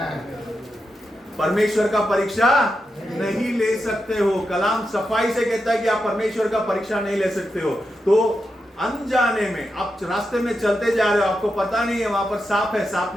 परमेश्वर का परीक्षा नहीं ले सकते हो। कलाम सफाई से कहता है कि आप परमेश्वर का परीक्षा नहीं ले सकते हो। तो अनजाने में आप रास्ते में चलते जा रहे हो, आपको पता नहीं है वहां पर सांप है, सांप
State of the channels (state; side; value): normal; both; correlation 0.87